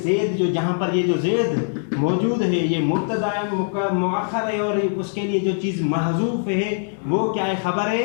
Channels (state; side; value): silent; right; 64 dB below the other